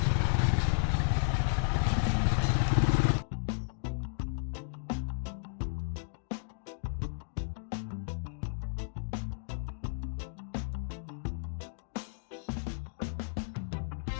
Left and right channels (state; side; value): silent; right; digital silence